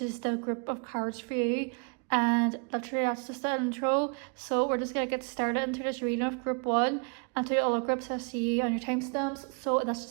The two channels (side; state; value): left; quieter; 38.2 dB